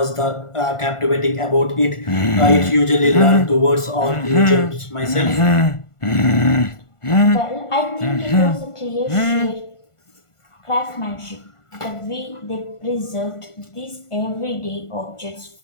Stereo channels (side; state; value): right; late; 1.4 ms